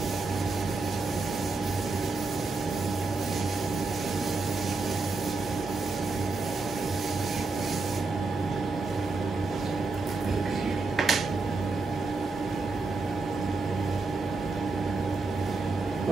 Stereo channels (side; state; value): left; quieter; 3.8 dB